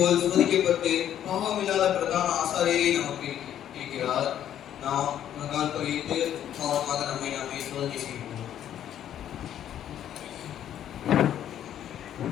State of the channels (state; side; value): quieter; right; 10.6 dB